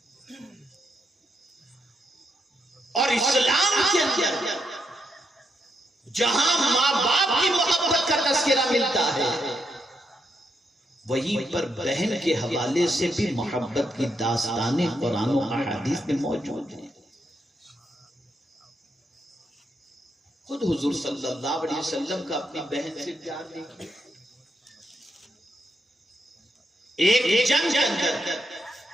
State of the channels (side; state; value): both; normal; correlation 0.80